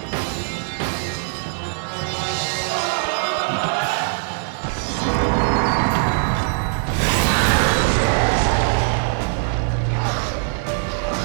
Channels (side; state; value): left; silent; 65 dB below the other